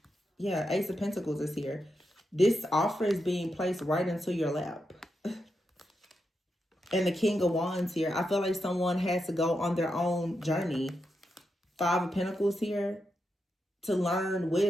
Yeah, Ace of Pentacles is here. This offer is being placed right into your lap. And the King of Wands here. I feel like someone has to go on their own journey. Five of Pentacles here. To learn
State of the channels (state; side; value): normal; both; correlation 0.86